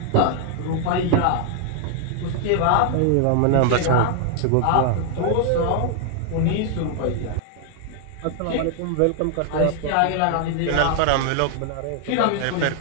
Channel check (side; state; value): both; different; correlation 0.00